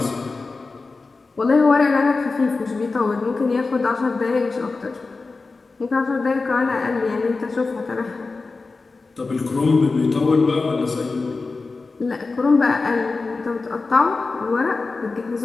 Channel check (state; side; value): quieter; right; 3.9 dB